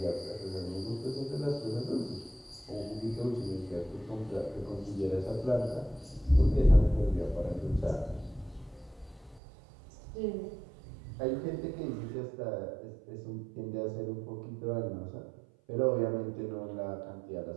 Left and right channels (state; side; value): drops out; left; at 9.4 s